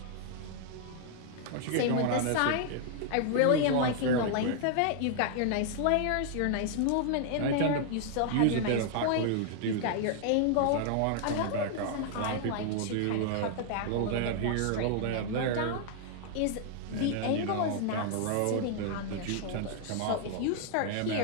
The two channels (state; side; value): different; both; correlation 0.00